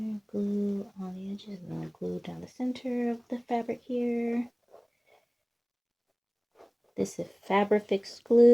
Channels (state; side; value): identical; both; correlation 1.00